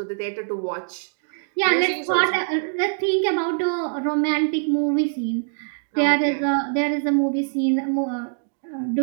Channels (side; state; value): left; silent; digital silence